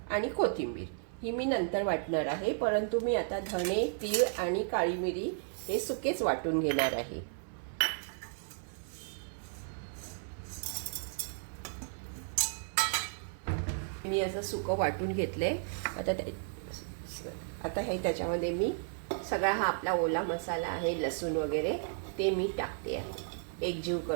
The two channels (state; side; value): silent; left; 55 dB below the other